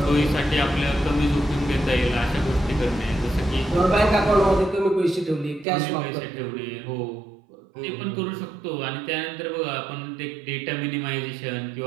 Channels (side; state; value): left; drops out; at 5.7 s